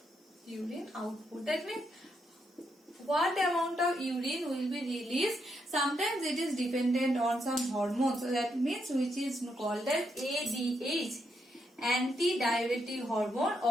Urine output. That means what amount of urine will be released. Sometimes it is dependent on some hormones. So that means which is called as ADH, anti-diuretic hormone,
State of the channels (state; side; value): normal; both; correlation 0.79